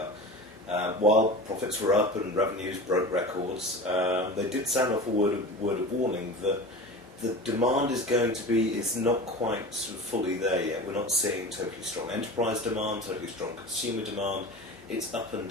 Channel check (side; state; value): both; normal; correlation 0.33